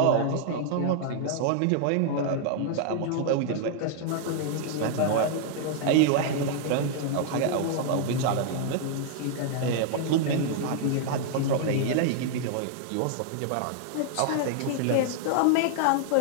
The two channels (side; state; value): both; different; correlation -0.01